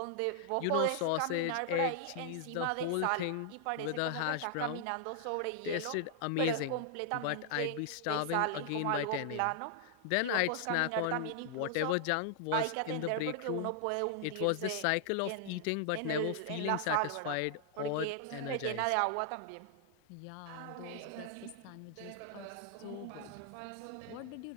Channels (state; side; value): different; both; correlation -0.01